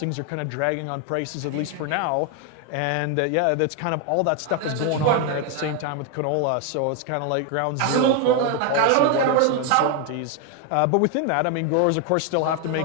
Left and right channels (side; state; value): both; different; correlation 0.01